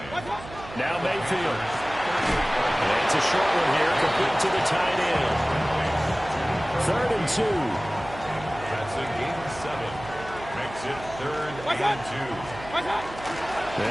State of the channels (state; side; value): noise; right; hum, 15 dB below the sound